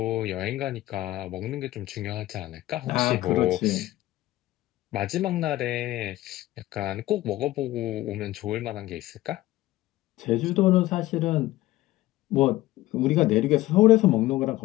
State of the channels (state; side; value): quieter; right; 16.7 dB